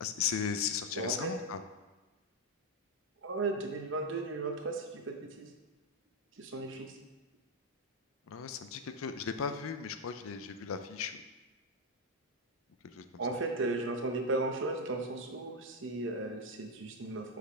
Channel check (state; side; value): normal; both; correlation 0.04